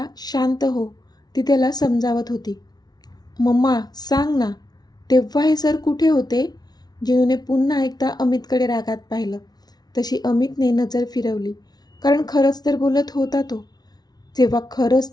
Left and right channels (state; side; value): late; right; 0.19 ms